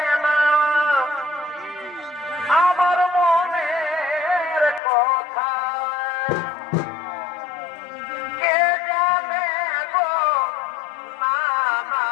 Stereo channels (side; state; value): right; drops out; at 4.8 s